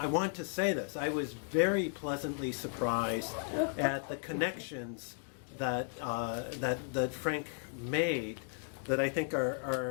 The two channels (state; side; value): silent; right; 54 dB below the other